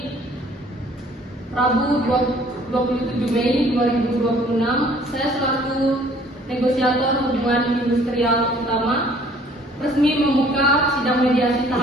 Rabu 27 Mei 2026, saya selaku negosiator hubungan industrial utama resmi membuka sidang mediasi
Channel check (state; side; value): normal; both; correlation 0.56